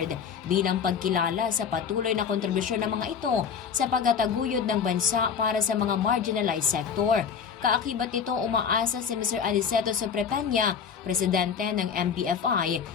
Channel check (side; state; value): right; quieter; 6.9 dB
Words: bilang pagkilala sa patuloy na kontribusyon ng mga ito sa pagtataguyod ng bansa para sa mga marginalized sector. Kaakibat nito, umaasa si Mr. Aniceto Soprepeña, presidente ng MBFI,